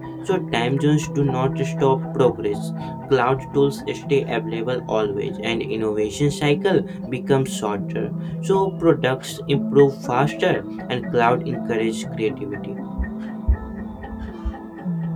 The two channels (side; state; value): both; identical; correlation 1.00